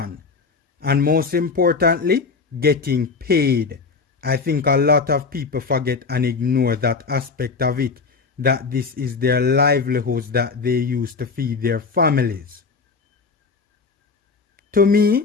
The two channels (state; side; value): quieter; right; 4.7 dB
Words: And most importantly, getting paid. I think a lot of people forget and ignore that aspect of it, that this is their livelihoods that they use to feed their families. To